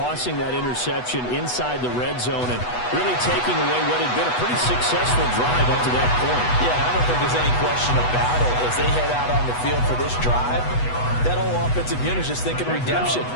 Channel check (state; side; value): late; right; 8.1 ms